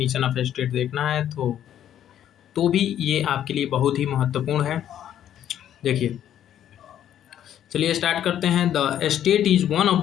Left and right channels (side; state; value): right; quieter; 10.7 dB